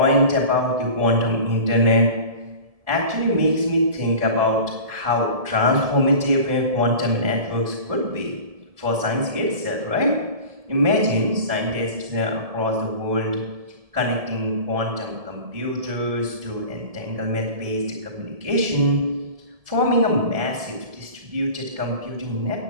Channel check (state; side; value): late; left; 1.7 ms